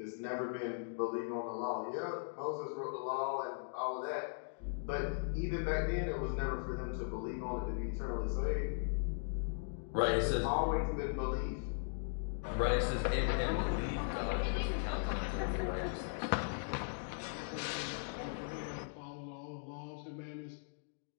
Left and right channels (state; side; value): silent; right; digital silence